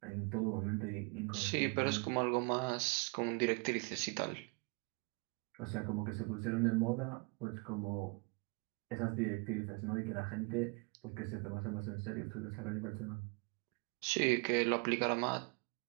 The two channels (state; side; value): quieter; left; 32.9 dB